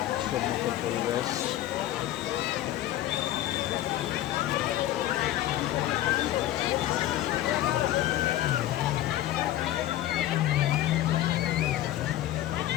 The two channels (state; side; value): quieter; right; 13.7 dB